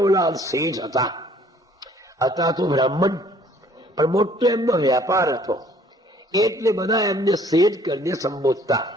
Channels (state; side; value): normal; both; correlation 0.58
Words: શેઠ હતા તો બ્રાહ્મણ, પણ મોટો એમનો વ્યાપાર હતો, એટલે બધા એમને શેઠ કરીને સંબોધતા.